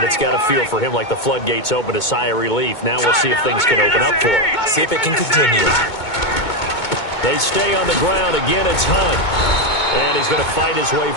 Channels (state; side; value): late; right; 2.2 ms